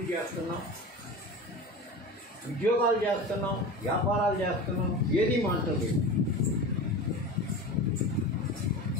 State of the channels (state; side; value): normal; both; correlation 0.31